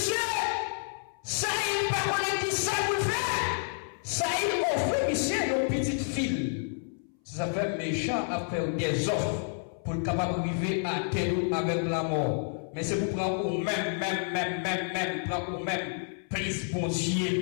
Saïl pas connaître qui ça vous fait. Saïl offre monsieur une petite fille. Ça fait méchant à faire des offres pour le capable d'arriver à terre avec la mort. Mais c'est pour prendre au même, prendre au même plus bon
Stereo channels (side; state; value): right; silent; 58 dB below the other